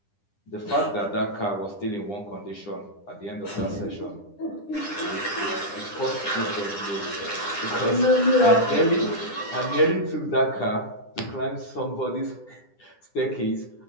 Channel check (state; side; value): late; right; 10 ms